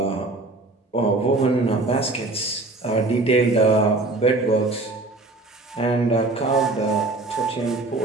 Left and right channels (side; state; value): left; quieter; 3.1 dB